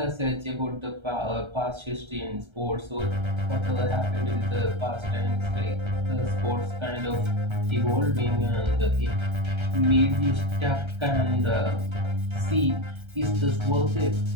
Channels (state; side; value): late; left; 1.3 ms